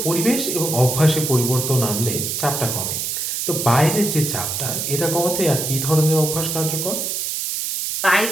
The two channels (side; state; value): right; noise; hiss, 2 dB below the sound